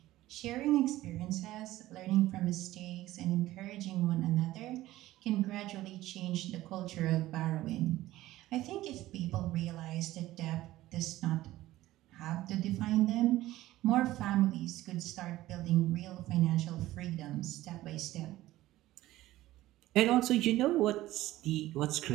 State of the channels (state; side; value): quieter; left; 16.0 dB